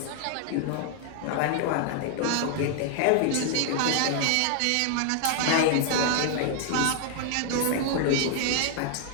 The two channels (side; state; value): both; different; correlation 0.00